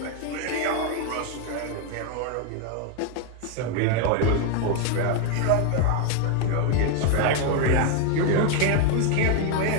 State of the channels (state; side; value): different; both; correlation 0.01